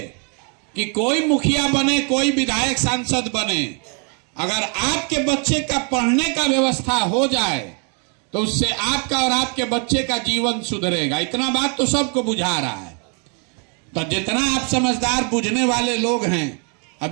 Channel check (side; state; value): left; quieter; 37.7 dB